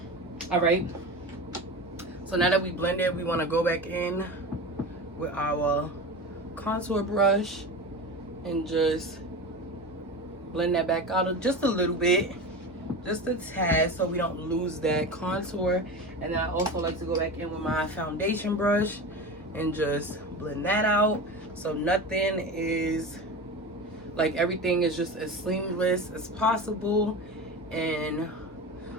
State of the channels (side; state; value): both; normal; correlation 0.28